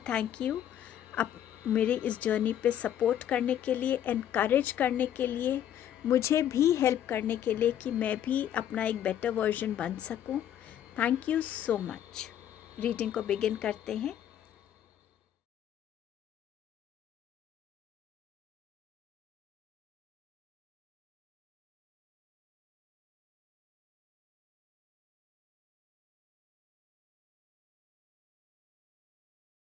थैंक यू, आप मेरे इस जर्नी पे सपोर्ट करने के लिए, एनकरेज करने के लिए, मुझे भी हेल्प करने के लिए कि मैं भी अपना एक बेटर वर्जन बन सकूं। Thank you so much. Reading को बिगिन करते हैं।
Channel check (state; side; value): quieter; right; 10.5 dB